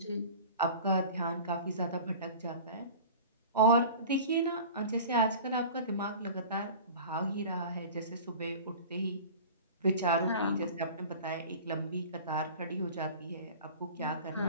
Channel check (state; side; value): inverted; both; correlation -0.39